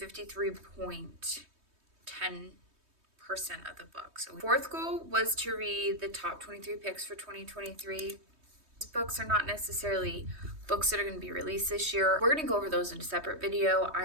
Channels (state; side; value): late; left; 3.2 ms